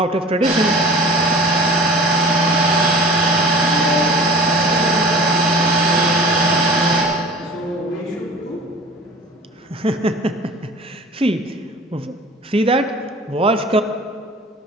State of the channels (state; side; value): normal; both; correlation 0.43